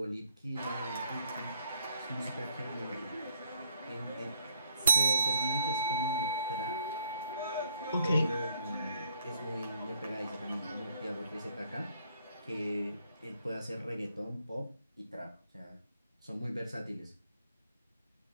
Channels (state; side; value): inverted; both; correlation -0.70